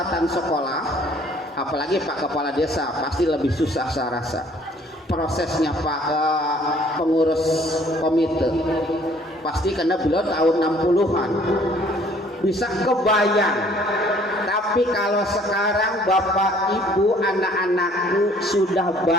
sekolah. Apalagi Pak Kepala Desa pasti lebih susah saya rasa. Prosesnya Pak pengurus komite pasti karena beliau tahun 60-an bisa kebayang. Tapi kalau sekarang Bapak Ibu anak-anakku sudah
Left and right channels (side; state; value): both; normal; correlation 0.58